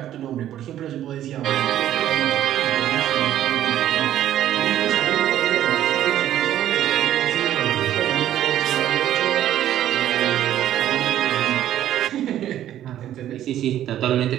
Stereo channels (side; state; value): left; quieter; 11.9 dB